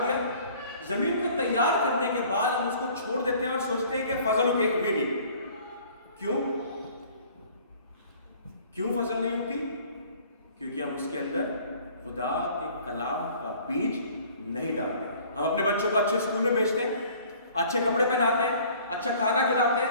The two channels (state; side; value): inverted; both; correlation -0.52